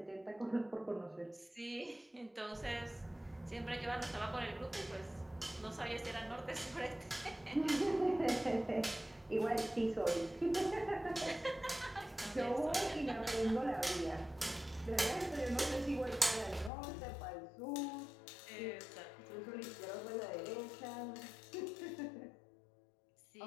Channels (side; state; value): right; drops out; at 16.7 s